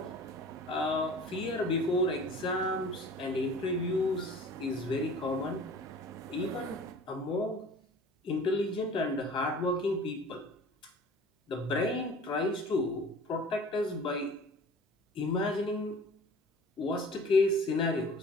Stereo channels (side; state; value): both; normal; correlation 0.44